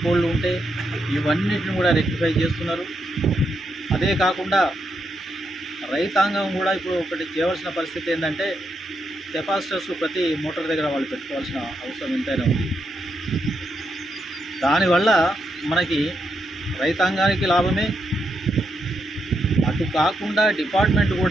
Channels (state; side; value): normal; both; correlation 0.81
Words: పోల్లు ఉంటే ఇవన్నిటిని కూడా రెక్టిఫై చేస్తున్నారు. అదే కాకుండా రైతాంగం కూడా ఇప్పుడు ఒకటి చేయవలసిన పరిస్థితి ఏంటంటే కెపాసిటర్స్ ప్రతి మోటార్ దగ్గర వాళ్ళు పెట్టుకోవాల్సిన అవసరం ఎంతైనా ఉంది. దానివల్ల మనకి రైతాంగానికి లాభమే, అటు కాకుండా డిపార్ట్మెంట్